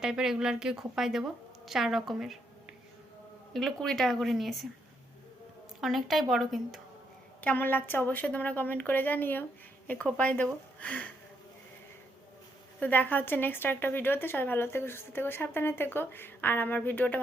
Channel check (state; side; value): normal; both; correlation 0.76